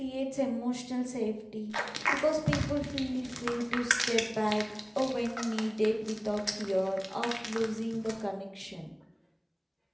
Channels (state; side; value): identical; both; correlation 1.00